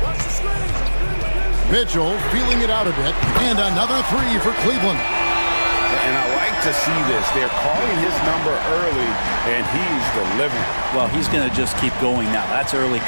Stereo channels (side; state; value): both; inverted; correlation -1.00